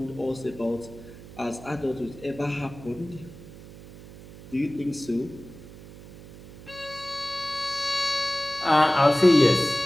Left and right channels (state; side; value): noise; right; hum, 17 dB below the sound